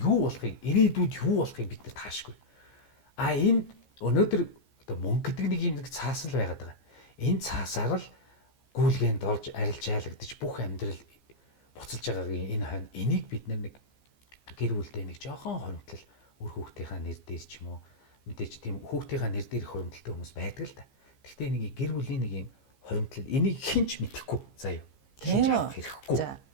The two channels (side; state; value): right; late; 15 ms